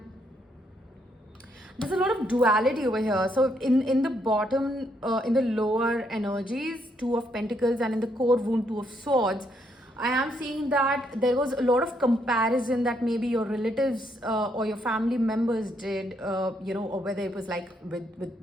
there's a lot of duality over here. So in the bottom, in the lower energies, 2 of Pentacles, and in the core wound, 2 of Swords, I am seeing that there was a lot of comparison that maybe your relatives or your family members did, or whether it was like with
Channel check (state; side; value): normal; both; correlation 0.74